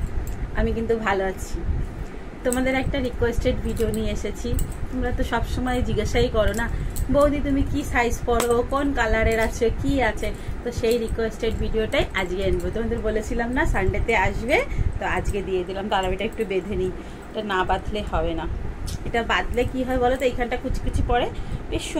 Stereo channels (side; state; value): both; identical; correlation 1.00